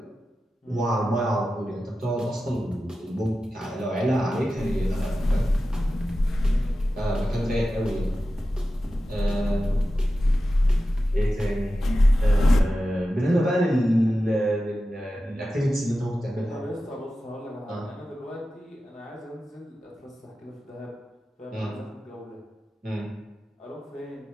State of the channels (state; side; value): normal; both; correlation 0.93